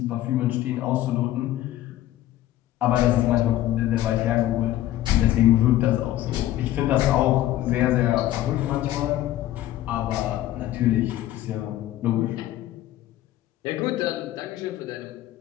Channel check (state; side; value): quieter; right; 14.1 dB